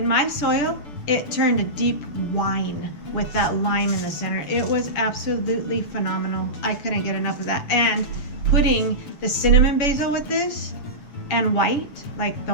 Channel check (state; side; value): late; right; 6.9 ms